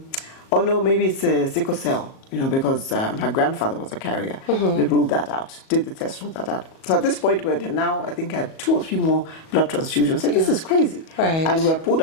oh no, maybe it's a sickle cell. Because her grandfather was a carrier. They ruled that out. Did the test, ruled that out. So at this point, we had now, I think, had 2 or 3 more blood transfusions. Said, this is crazy. Right. And we had pulled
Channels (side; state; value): right; late; 37 ms